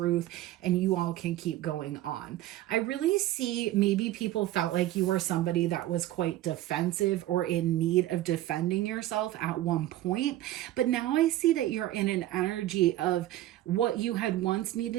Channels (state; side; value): quieter; left; 14.6 dB